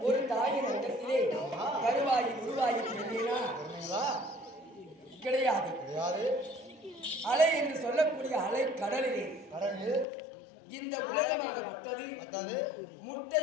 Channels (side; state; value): right; drops out; at 10.1 s